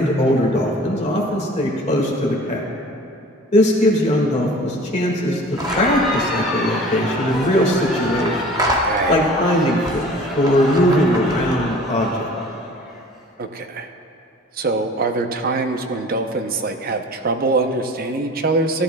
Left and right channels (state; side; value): normal; both; correlation 0.45